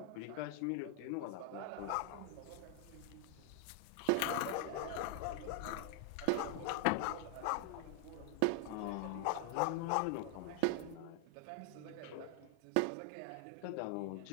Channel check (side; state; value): both; different; correlation 0.00